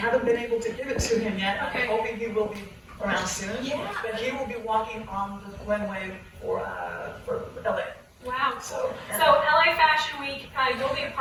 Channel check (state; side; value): identical; both; correlation 1.00